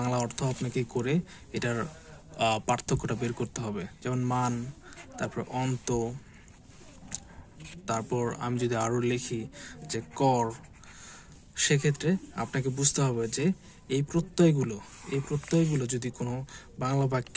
অর্থ আপনাকে করে এটার পার্থক্যটা বের করতে হবে। যেমন মান, তারপর অন্ত, তারপর আমি যদি আরো লিখি যে কর, সেক্ষেত্রে আপনাকে বুঝতে হবে যে এই প্রত্যয়গুলো যদি কোনো বাংলা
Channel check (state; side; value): identical; both; correlation 1.00